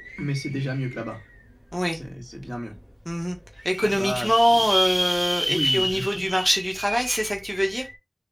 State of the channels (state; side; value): identical; both; correlation 1.00